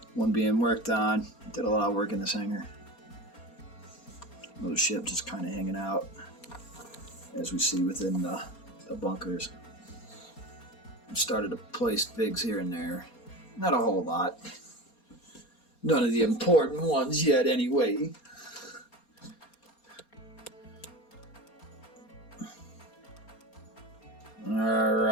One being worked on. Did a lot of work in this hangar. Little ship just kind of hanging out, as we see within the bunkers. I've started to place figs here and there. Not a whole lot. None of the important ones yet anyway.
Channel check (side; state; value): right; late; 4.3 ms